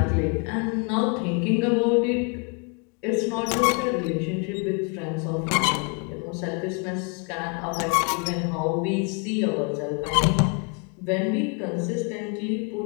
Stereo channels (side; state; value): right; quieter; 36.2 dB